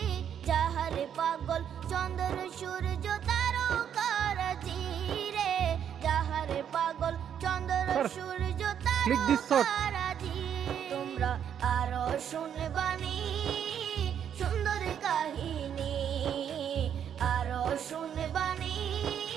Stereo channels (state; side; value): quieter; left; 8.8 dB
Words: যাহার পাগল চন্দ্র সূর্য তারকারাজি রে, যাহার পাগল চন্দ্র সূর্য তারকারাজি। তোমরা আরো শুনবা